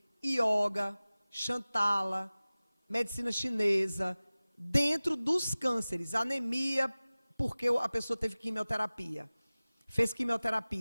yoga, Shantala, medicina chinesa, dentro dos cânceres, anemia, porque a pessoa teve quimioterapia, fez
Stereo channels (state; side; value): inverted; both; correlation -0.98